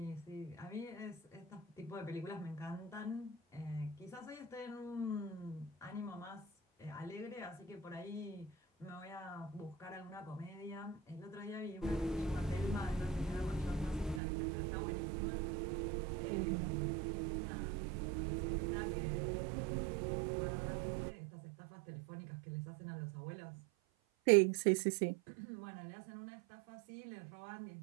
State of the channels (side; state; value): left; drops out; at 14.2 s